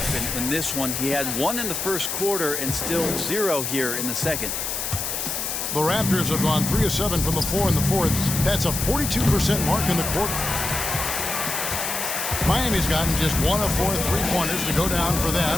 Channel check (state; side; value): noise; left; hiss, 3 dB below the sound